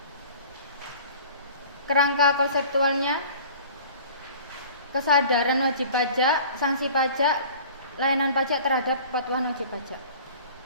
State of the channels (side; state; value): both; inverted; correlation -0.44